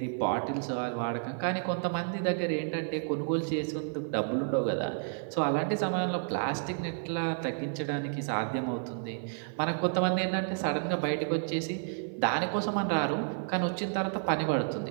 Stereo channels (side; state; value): left; silent; 57 dB below the other